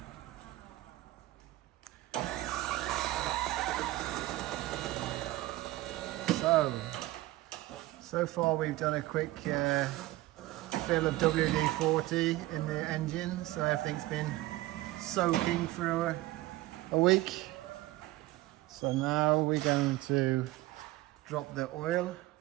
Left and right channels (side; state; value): left; quieter; 17.9 dB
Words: So far we've done a quick fill of WD-40 in the engine, so everything's been soaking for a week. So now we're going to drop the oil,